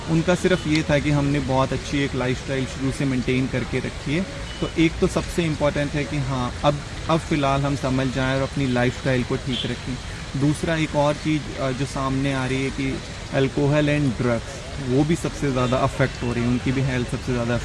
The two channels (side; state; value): both; identical; correlation 1.00